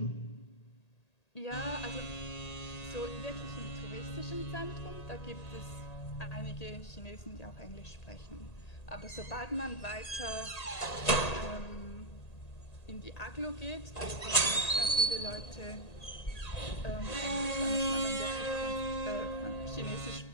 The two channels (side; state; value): right; late; 1.8 ms